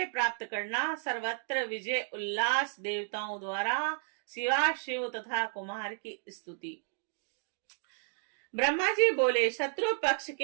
प्राप्त करना। सर्वत्र विजय उल्लास। देवताओं द्वारा शिवा शिव तथा कुमार की स्तुति। ब्रह्मा जी बोले, शत्रु पक्ष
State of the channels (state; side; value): silent; left; digital silence